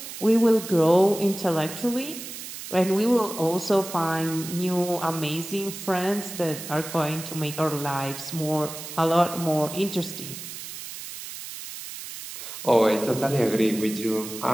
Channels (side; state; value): right; noise; hiss, 10 dB below the sound